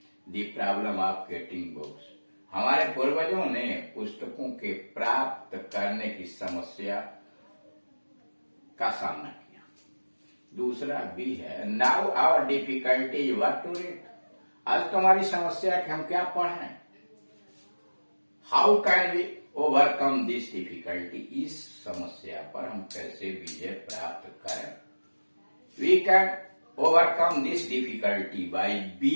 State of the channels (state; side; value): inverted; both; correlation -1.00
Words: the problem of getting books, हमारे पूर्वजों ने पुस्तकों के प्राप्त करने की समस्या का सामना किया। दूसरा बी है, now our difficulty is what to read, आज तुम्हारी समस्या है कि हम क्या पढ़ें। How can we overcome this difficulty, इस समस्या पर हम कैसे विजय प्राप्त करें। We can overcome this difficulty by